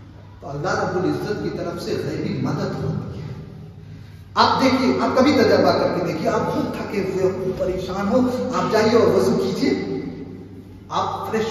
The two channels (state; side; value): identical; both; correlation 1.00